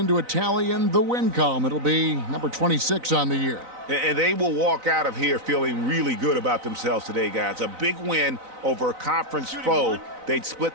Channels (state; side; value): late; left; 4.0 ms